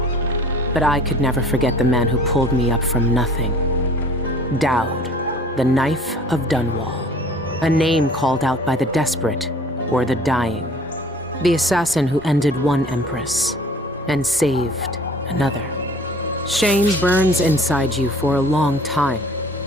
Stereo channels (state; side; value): normal; both; correlation 0.49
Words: But I could never forget the man who pulled me up from nothing. Dowd, the Knife of Dunwall. A name called out by the desperate or the dying. The assassin who ended one empress and saved another. Shame burns inside you for a long time.